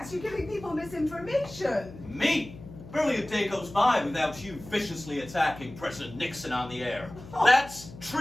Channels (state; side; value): noise; left; hum, 16 dB below the sound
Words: You're giving people misinformation. Me? Barely a day goes by without you viciously attacking President Nixon on the air. That's